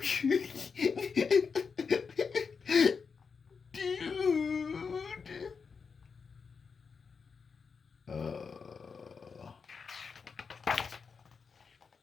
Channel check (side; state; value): right; quieter; 5.5 dB